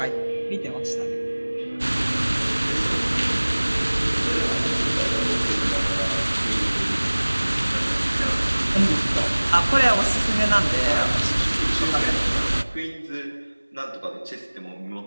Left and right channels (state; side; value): inverted; both; correlation -1.00